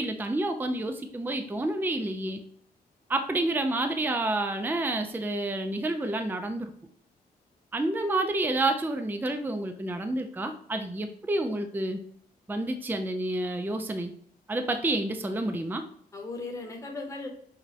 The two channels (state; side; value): normal; both; correlation 0.67